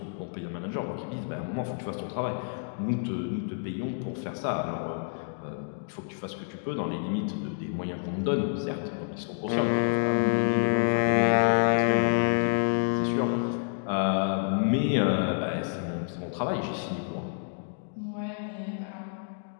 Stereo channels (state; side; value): silent; right; digital silence